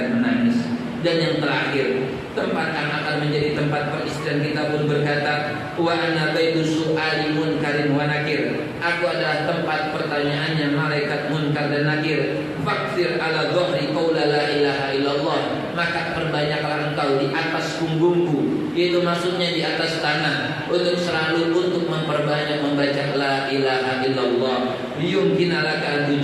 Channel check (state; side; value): identical; both; correlation 1.00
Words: menangis. Dan yang terakhir, tempat yang akan menjadi tempat peristian kita pun berkata, wa ana baitu su'ali munkarin wa nakir. Aku adalah tempat pertanyaannya malaikat munkar dan nakir. Fakfir ala dhahri qaula la ilaha illallah. Maka perbanyaklah engkau di atas punggungku, yaitu maksudnya di atas tanah, untuk selalu untuk memperbanyak membaca la ilaha illallah. Liyumkina laka an